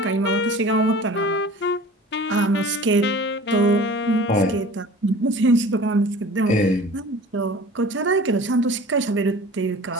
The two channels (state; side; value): normal; both; correlation 0.42